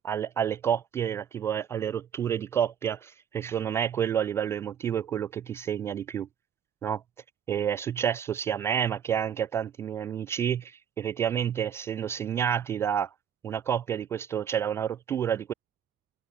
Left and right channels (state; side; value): quieter; left; 8.5 dB